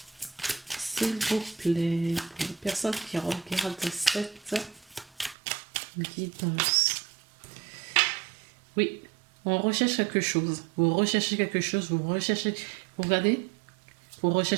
S'il vous plaît, pour les personnes qui regardent cette guidance. Oui, on recherche quelque chose. Vous recherchez quelque chose, vous regardez, vous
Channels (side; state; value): left; drops out; at 5.4 s